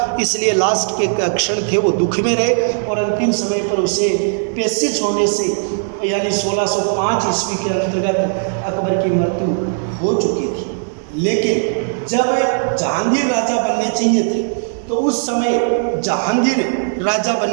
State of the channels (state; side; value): silent; left; 68 dB below the other